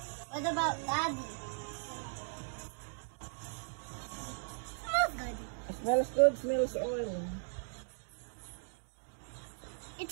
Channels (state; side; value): silent; left; digital silence